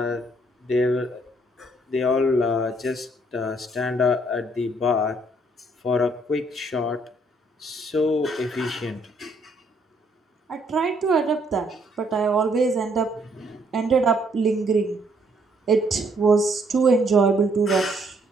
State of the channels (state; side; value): normal; both; correlation 0.67